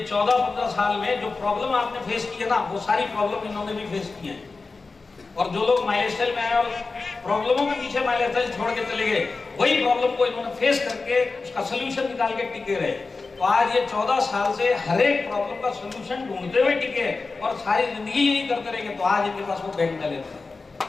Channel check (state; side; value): quieter; right; 4.0 dB